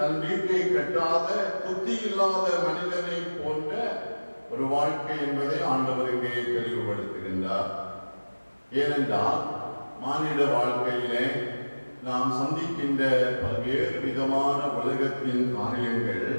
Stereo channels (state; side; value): inverted; both; correlation -1.00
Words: வீட்டை கட்டாத புத்தி இல்லாத மனிதனை போன்ற ஒரு வாழ்க்கை என்பதை ஆண்டவர் இங்கே தெளிவுபடுத்துகின்றார். ஏனென்றால் மானிட வாழ்க்கையிலே நாம் சந்திக்கின்ற பல்வேறு விதமான உலகத்தின் காரியங்கள்